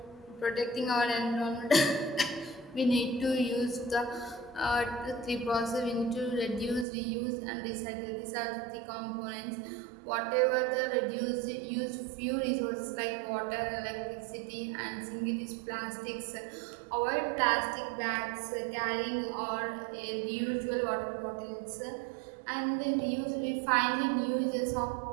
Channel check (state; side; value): drops out; left; at 6.9 s